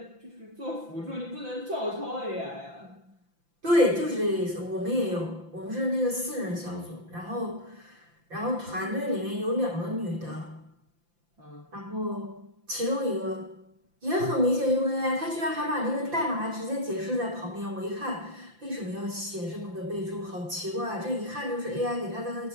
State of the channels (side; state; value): left; late; 5.8 ms